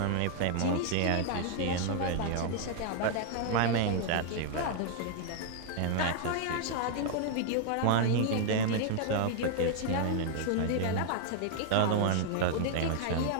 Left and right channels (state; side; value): different; both; correlation 0.00